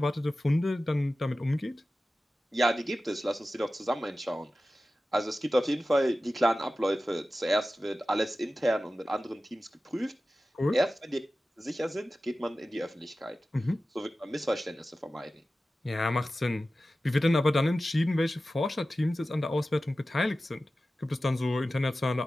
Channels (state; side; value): normal; both; correlation 0.95